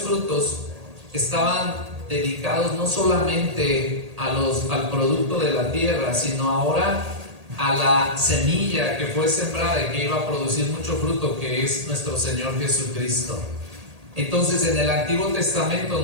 estaban dedicados no solamente al producto de la tierra, sino ahora a la semilla que fue sembrada y que iba a producir mucho fruto, que es nuestro Señor Jesucristo. Entonces, en el Antiguo Testamento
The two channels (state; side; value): late; left; 1.8 ms